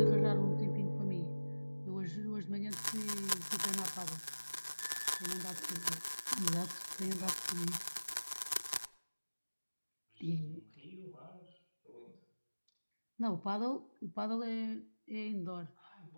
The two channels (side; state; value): both; inverted; correlation -1.00